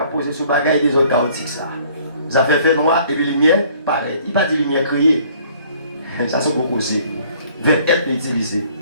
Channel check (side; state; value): both; inverted; correlation -0.58